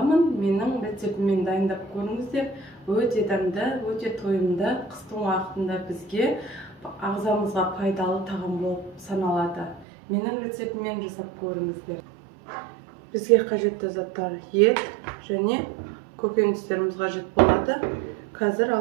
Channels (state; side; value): drops out; left; at 9.9 s